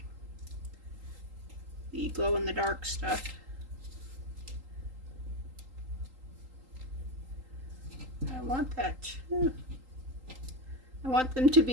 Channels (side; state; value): left; late; 3.8 ms